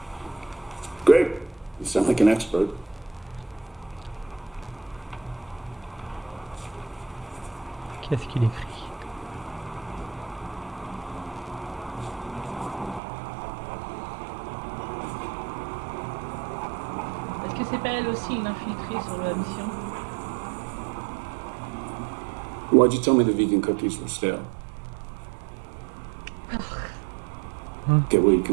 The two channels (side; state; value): left; drops out; at 13.0 s